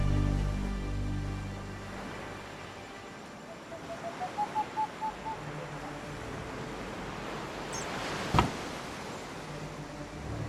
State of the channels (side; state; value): both; identical; correlation 1.00